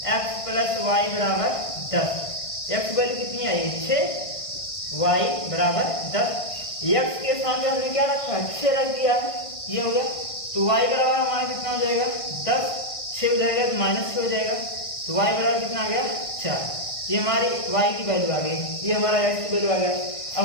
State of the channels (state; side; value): late; right; 1.5 ms